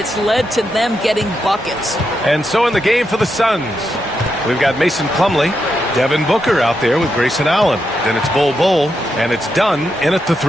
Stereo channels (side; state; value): both; normal; correlation 0.84